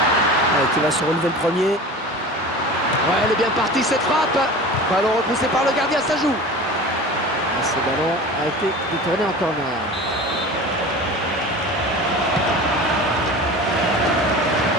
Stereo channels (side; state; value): both; normal; correlation 0.36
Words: Qui va se relever le premier. Ouais, elle est bien partie cette frappe. Ballon repoussé par le gardien, ça joue. Ce ballon a été détourné en corner.